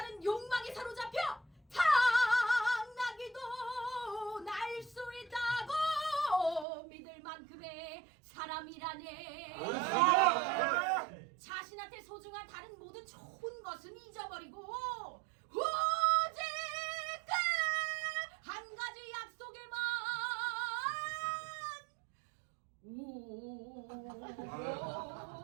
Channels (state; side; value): drops out; left; at 6.7 s